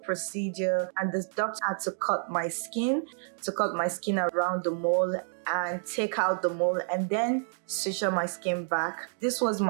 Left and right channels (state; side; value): silent; left; digital silence